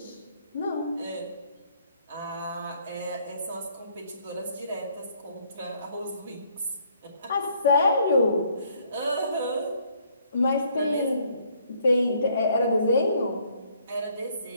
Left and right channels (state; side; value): inverted; both; correlation -0.65